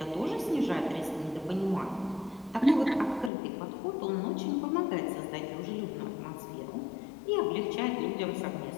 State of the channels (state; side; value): drops out; right; at 3.3 s